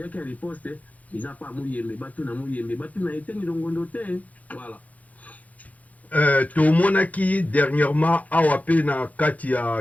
ya riposte eza pa Muyembe batuna Muyembe batuna Etienne Longondo te. Voilà. Tomonaki dernièrement awa pe na kati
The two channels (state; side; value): late; right; 0.074 ms